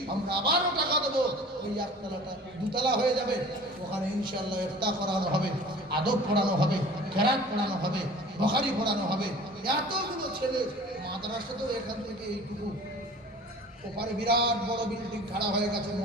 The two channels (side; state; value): both; normal; correlation 0.44